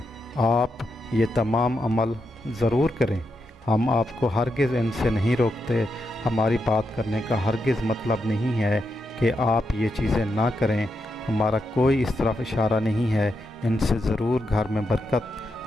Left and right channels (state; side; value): normal; both; correlation 0.84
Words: آپ یہ تمام عمل ضرور کریں۔ ہم آپ کو ہرگز ان سے نہیں روکتے۔ ہماری بات کرنے کا ہرگز مطلب نہیں ہے کہ آپ یہ چیزیں نہ کریں۔ ہمارا کوئی اس طرف اشارہ نہیں ہے۔ ان سے ضرور گھر میں